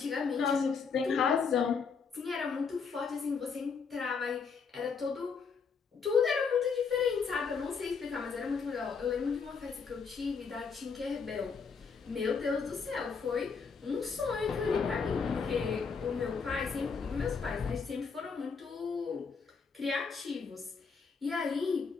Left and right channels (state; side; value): quieter; right; 5.5 dB